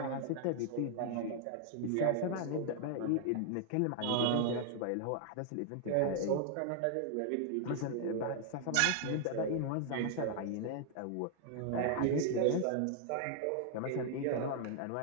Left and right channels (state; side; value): different; both; correlation 0.00